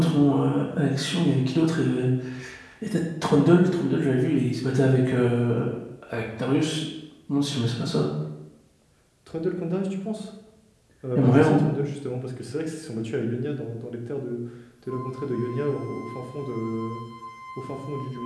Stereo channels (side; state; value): both; identical; correlation 1.00